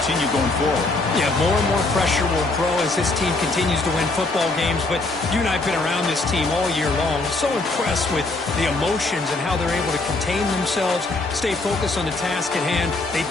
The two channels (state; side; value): quieter; right; 3.2 dB